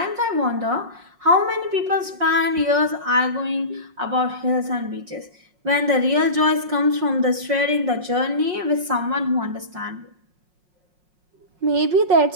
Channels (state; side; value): late; left; 5.5 ms